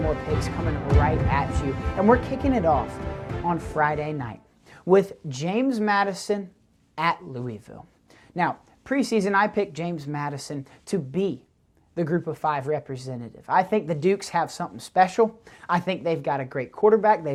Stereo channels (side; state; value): both; identical; correlation 1.00